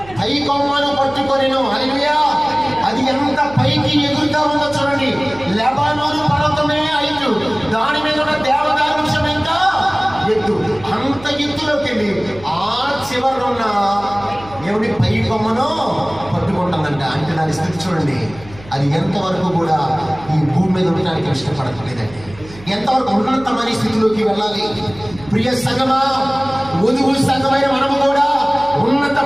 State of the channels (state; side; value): noise; right; hum, 19 dB below the sound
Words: పై కొమ్మను పట్టుకొనెను. హల్లెలూయా! అది ఎంత పైకి ఎగురుతా ఉందో చూడండి. లెబానోను పర్వతమే హైట్, దాని మీద ఉన్న దేవదారు వృక్షం ఎంత ఎత్తు. అంత ఎత్తులోకి వెళ్ళి ఆ చివరన ఉన్న దేవుడి పై కొమ్మను పట్టుకుంటుందంట. అంటే దాని స్థితి చూడండి, అది ఎంతవరకు కూడా ఈ భూమి మీద ఉండడానికి ఇష్టపడట్లేదండి. ఎంతవరకు ఉన్నతమైన స్థితిలోకి వెళ్ళాలి. ప్రియ సంగమా, వధువు సంఘమైన మనము కూడా